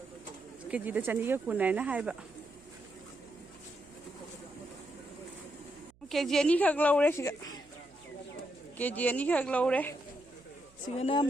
केजी दा चनी का कुन है ना है बा केजी नहीं खग लो रे सिगा केजी नहीं खग लो रे सिगना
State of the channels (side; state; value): right; noise; hum, 30 dB below the sound